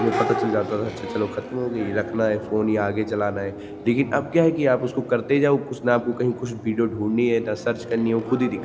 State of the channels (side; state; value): both; identical; correlation 1.00